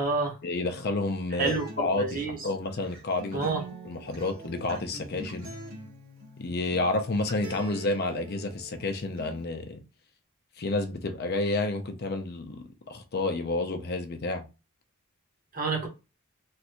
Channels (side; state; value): both; normal; correlation 0.14